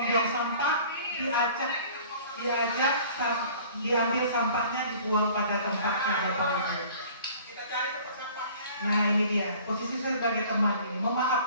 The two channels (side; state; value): both; inverted; correlation -0.49